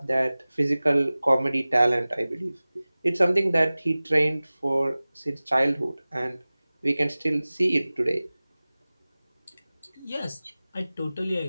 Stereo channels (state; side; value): inverted; both; correlation -0.98